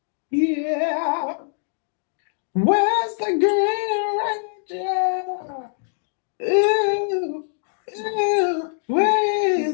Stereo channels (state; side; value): silent; right; digital silence